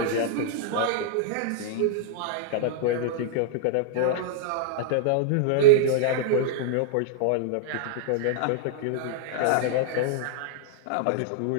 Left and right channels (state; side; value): different; both; correlation -0.01